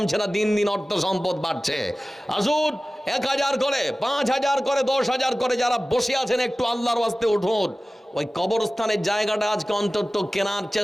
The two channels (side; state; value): both; normal; correlation 0.97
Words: না, দিন দিন অর্থ সম্পদ বাড়ছে। আসুন 1000 করে, 5000 করে, 10000 করে, যারা বসে আছেন একটু আল্লাহর ওয়াস্তে উঠুন। ওই কবরস্থানের জায়গাটা আজকে অন্তত কেনার